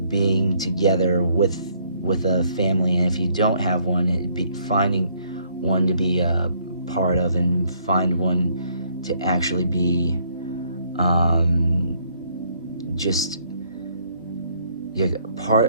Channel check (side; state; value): both; inverted; correlation -0.67